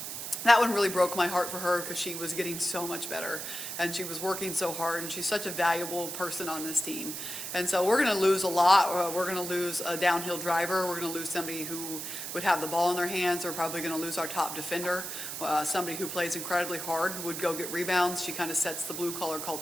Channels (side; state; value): right; noise; hiss, 6 dB below the sound